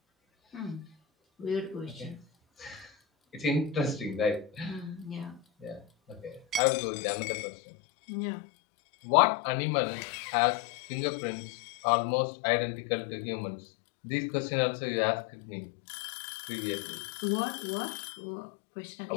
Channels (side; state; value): right; drops out; at 6.6 s